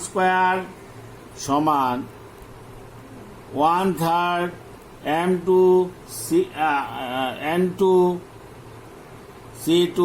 স্কয়ার সমান 1/3 M2 N2 C2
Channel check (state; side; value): identical; both; correlation 1.00